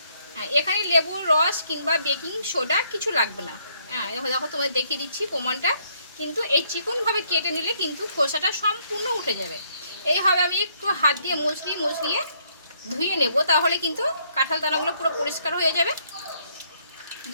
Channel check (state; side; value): inverted; both; correlation -0.69